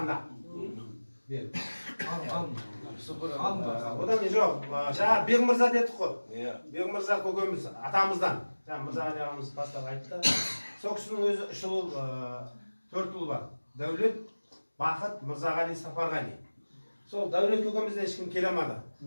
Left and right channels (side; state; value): both; inverted; correlation -1.00